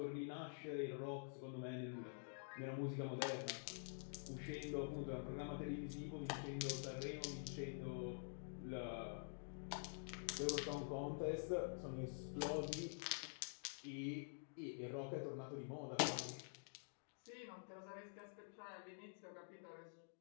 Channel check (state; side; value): silent; right; digital silence